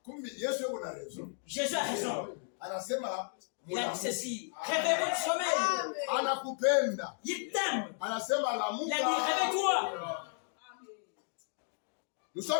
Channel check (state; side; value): silent; right; 55 dB below the other